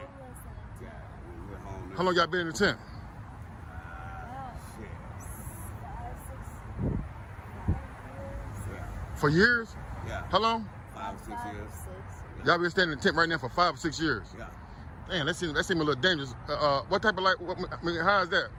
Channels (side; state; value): both; identical; correlation 1.00